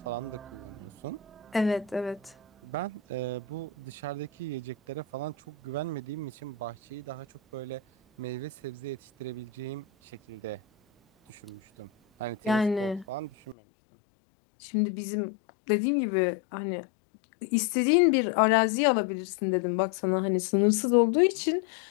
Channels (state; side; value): drops out; right; at 13.6 s